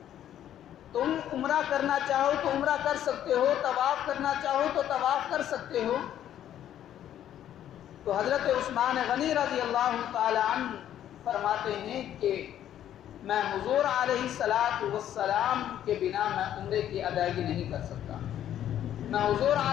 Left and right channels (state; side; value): quieter; right; 11.1 dB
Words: تم عمرہ کرنا چاہو تو عمرہ کر سکتے ہو، طواف کرنا چاہو تو طواف کر سکتے ہو۔ تو حضرت عثمان غنی رضی اللہ تعالی عنہ فرماتے ہیں کہ میں حضور علیہ السلام کے بنا میں عمرے کی ادائیگی نہیں کر سکتا، میں حضور